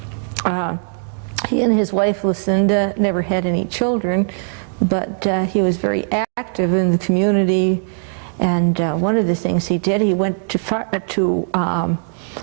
He and his wife Lucinda never had any children, but he was very active in the community. And one of the things he did, he went to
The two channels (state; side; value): silent; left; digital silence